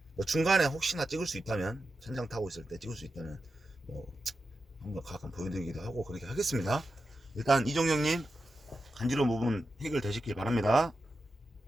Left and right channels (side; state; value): both; normal; correlation 0.90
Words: 뭐 중간에 혹시나 찍을 수 있다면 천장 타고 있을 때 찍을 수 있다면 뭐 한번 가끔 보여드리기도 하고 그렇게 하겠습니다. 일단 이종영님 간지러운 부분 해결되시길 바랍니다.